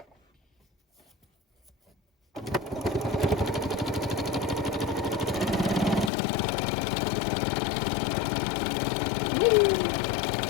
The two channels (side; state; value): right; drops out; at 6.1 s